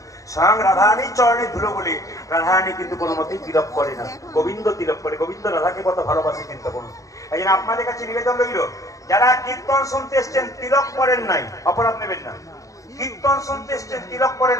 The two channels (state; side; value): late; right; 0.16 ms